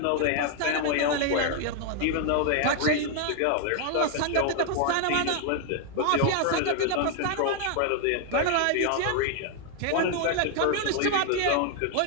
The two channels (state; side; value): different; both; correlation 0.00